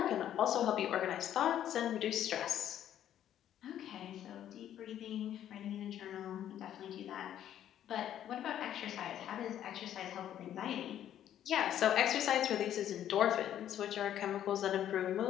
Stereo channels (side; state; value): right; quieter; 10.9 dB